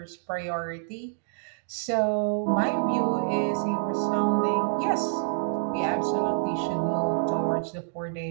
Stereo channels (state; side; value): silent; left; digital silence